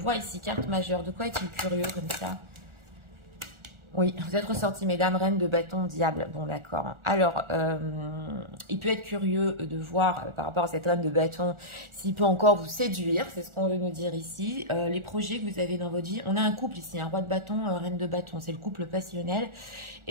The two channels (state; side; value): late; left; 1.4 ms